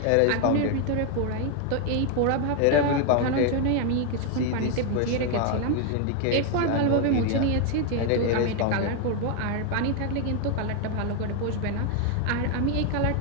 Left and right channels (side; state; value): both; different; correlation 0.01